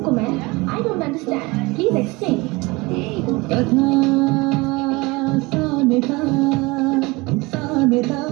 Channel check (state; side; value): quieter; left; 24.0 dB